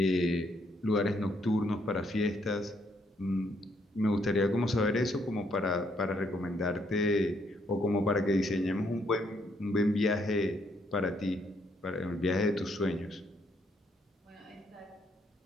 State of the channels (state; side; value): normal; both; correlation 0.72